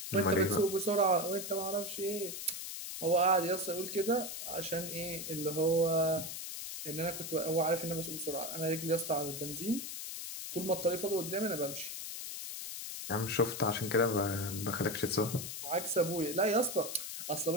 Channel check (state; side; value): noise; left; hiss, 7 dB below the sound